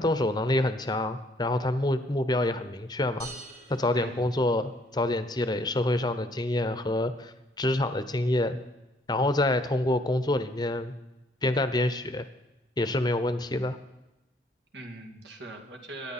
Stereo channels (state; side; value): normal; both; correlation 0.64